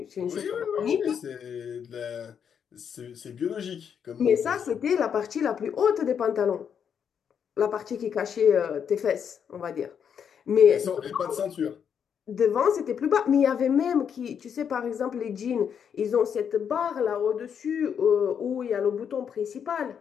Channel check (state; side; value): quieter; right; 7.7 dB